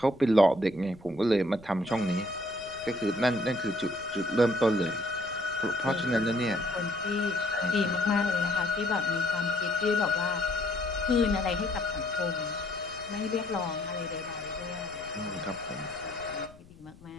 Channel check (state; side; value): noise; left; rumble, 23 dB below the sound